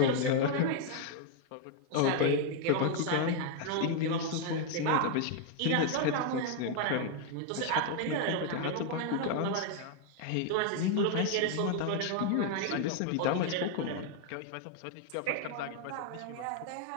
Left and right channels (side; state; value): both; different; correlation 0.00